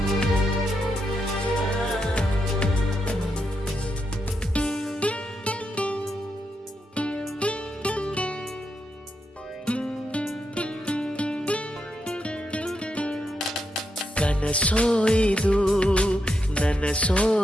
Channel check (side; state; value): both; normal; correlation 0.83